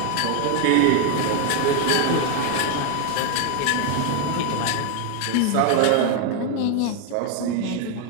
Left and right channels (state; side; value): different; both; correlation 0.01